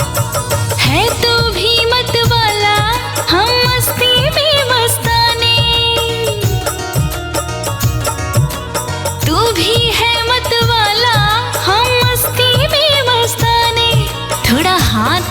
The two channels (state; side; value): identical; both; correlation 1.00